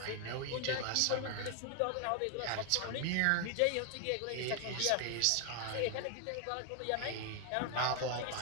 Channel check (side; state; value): both; different; correlation 0.00